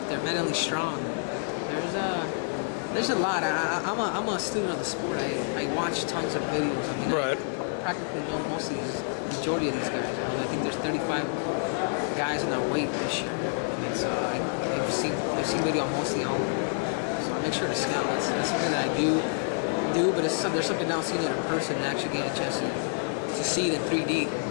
they're mentally strong. There's a lot. I'm a student of the sport. I watch tons of videos. I mean, Right. I practically know most of these, majority of these guys. I mean, I think there's 35 guys in our weight this year. And so I've seen video on mostly all of them. So I make sure to scout. That's something that I do, but there's something else seeing it in person and actually getting a chance to see it in 3D.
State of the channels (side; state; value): right; silent; digital silence